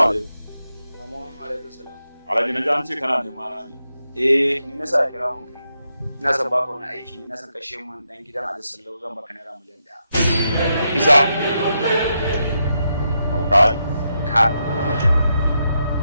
alaikum. Amma alaikum salam. Alhaji na ji an ce kana nema na ne. Ni na sa kira mun kai. Ina son baka wani aiki ne, na san kashe mun dan gidan Ali Sallau zan baka naira miliyan 1. Kisa. Aukai. Ka.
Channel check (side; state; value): both; inverted; correlation -0.83